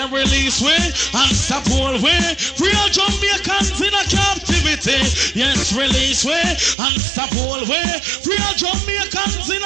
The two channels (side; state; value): left; drops out; at 6.8 s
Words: release way and stop all way. Free all Jamaicans in a captivity. Yes, release way and stop all way. Free all Jamaicans in